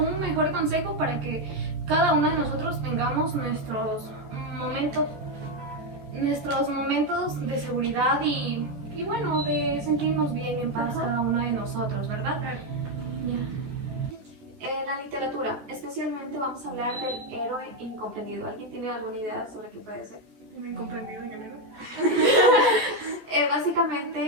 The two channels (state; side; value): late; left; 14 ms